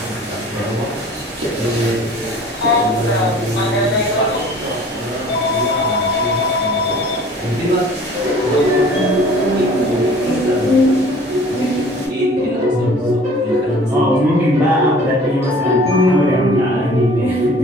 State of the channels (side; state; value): both; normal; correlation 0.49